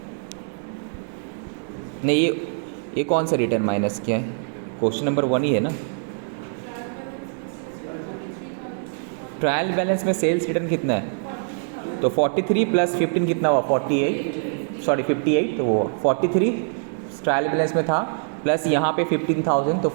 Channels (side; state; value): left; silent; 61 dB below the other